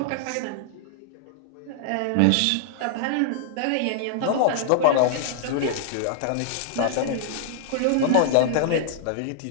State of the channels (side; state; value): both; different; correlation -0.01